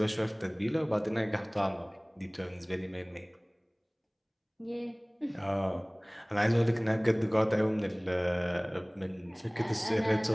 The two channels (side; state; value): both; identical; correlation 1.00